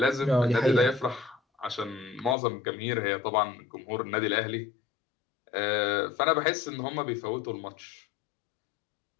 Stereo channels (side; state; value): right; drops out; at 2.4 s